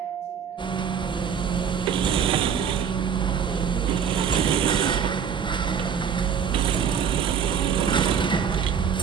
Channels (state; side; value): quieter; left; 7.4 dB